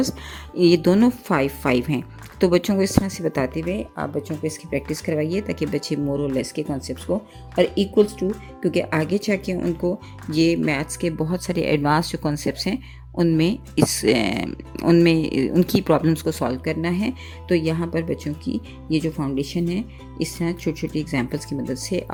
ये दोनों 5 हैं. तो बच्चों को इस तरह से बताते हुए आप बच्चों को इसकी प्रैक्टिस करवाइए ताकि बच्चे मोर और लेस के कॉन्सेप्ट्स को और इक्वल्स टू, क्योंकि आगे जाके उनको ये मैथ्स के बहुत सारे एडवांस जो कॉन्सेप्ट्स हैं उनमें उनकी प्रॉब्लम्स को सॉल्व करना है. तो यहाँ पर बच्चों की ये जो फाउंडेशन है इस तरह छोटी छोटी एग्जांपल्स की मदद से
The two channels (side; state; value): both; identical; correlation 1.00